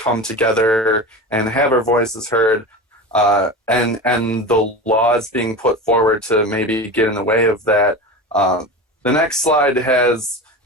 together and have our voices heard, and the laws being put forward to maybe get in the way of that. The next slide has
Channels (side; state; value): both; normal; correlation 0.28